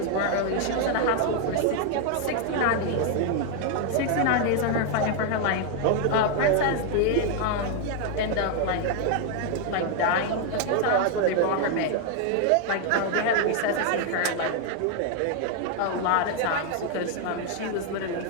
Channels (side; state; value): both; different; correlation 0.01